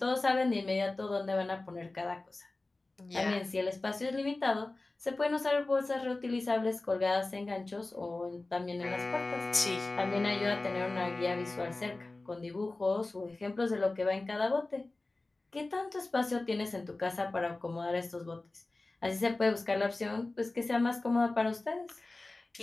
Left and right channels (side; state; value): right; quieter; 3.1 dB